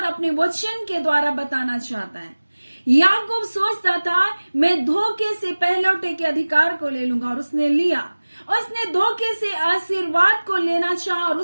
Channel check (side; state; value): both; inverted; correlation -1.00